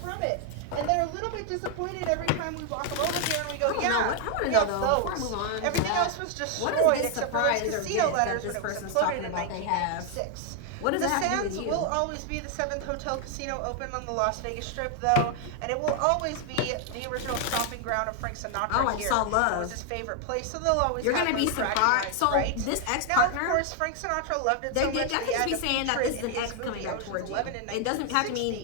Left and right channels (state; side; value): different; both; correlation 0.00